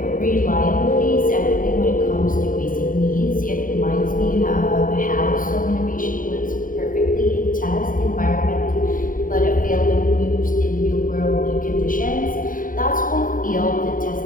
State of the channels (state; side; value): late; right; 0.39 ms